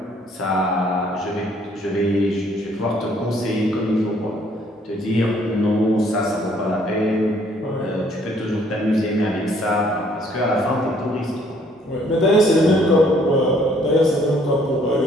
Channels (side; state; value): both; normal; correlation 0.63